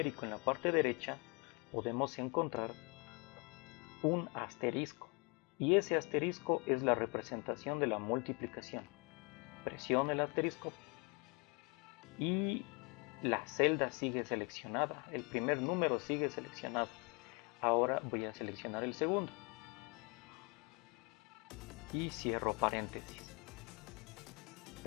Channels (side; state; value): right; quieter; 32.0 dB